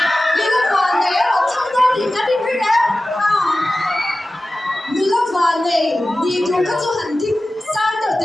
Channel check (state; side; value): normal; both; correlation 0.95